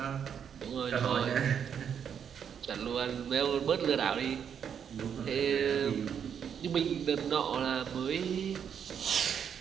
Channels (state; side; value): quieter; left; 7.9 dB